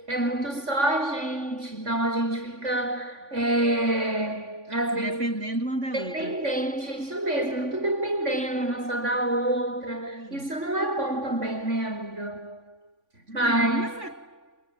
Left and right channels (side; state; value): left; late; 3.5 ms